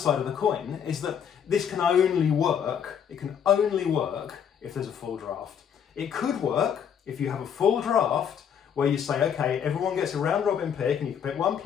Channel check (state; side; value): quieter; right; 8.0 dB